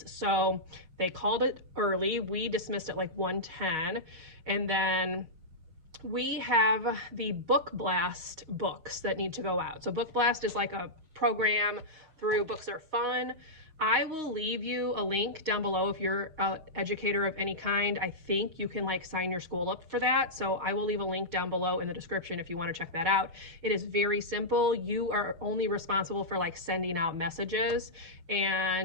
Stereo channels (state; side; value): late; left; 6.3 ms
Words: So they called it early. We dismissed at like 1:10, and then we have the Book Blast books that need to go out. So Book Blast is like a program through Books Are Fun. I will leave you a link down below if you're an educator of any kind. I think you can like sign your school up for that. So I will leave a link down below in the description if you want to check that out. It is very simple. You are only responsible for like sending out messages,